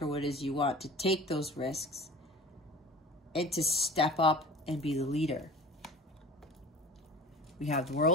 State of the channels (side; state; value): both; normal; correlation 0.40